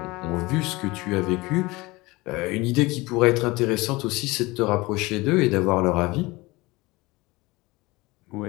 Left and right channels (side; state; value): right; quieter; 22.2 dB